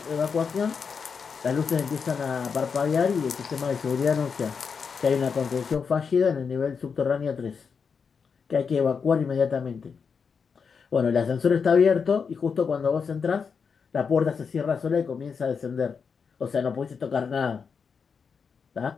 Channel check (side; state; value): right; quieter; 5.9 dB